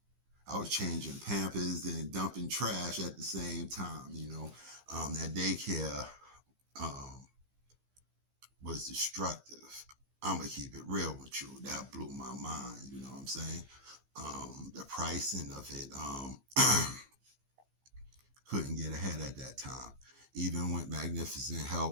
was changing Pampers and dumping trash at the same time, you know. That daycare was destructive. I'm going to keep it real with you. That blew my mind, you know what I'm saying? The pricing of it, couldn't get ahead at that time. Even with magnificent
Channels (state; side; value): late; left; 15 ms